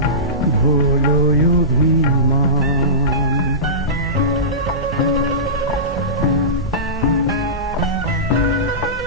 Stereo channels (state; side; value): normal; both; correlation -0.20